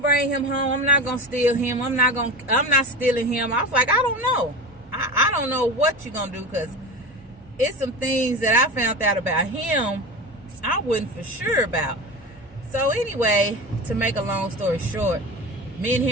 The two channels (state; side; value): normal; both; correlation 0.28